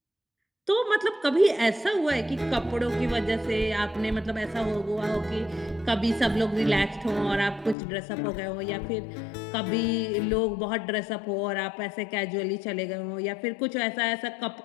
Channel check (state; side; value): drops out; right; at 7.8 s